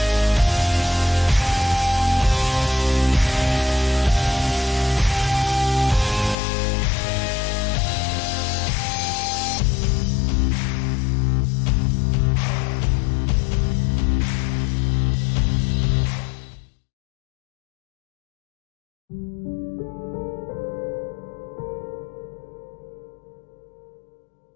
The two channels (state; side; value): drops out; right; at 6.4 s